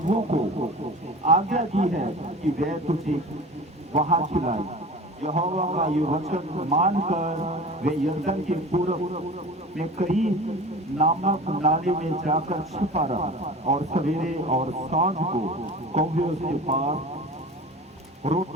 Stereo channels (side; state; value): both; normal; correlation 0.37